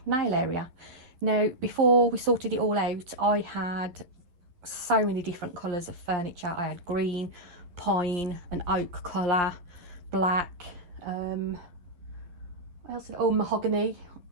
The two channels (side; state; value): left; late; 12 ms